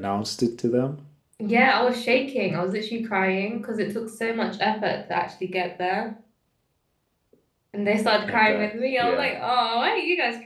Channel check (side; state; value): both; identical; correlation 1.00